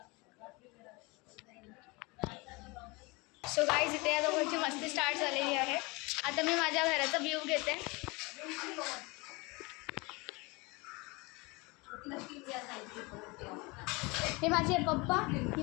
सो गाईज, इथे या दोघांची मस्ती स्टार्ट झालेली आहे. आता मी माझ्या घराचा व्ह्यू घेते. हे माझे पप्पा, ही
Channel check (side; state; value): right; quieter; 25.9 dB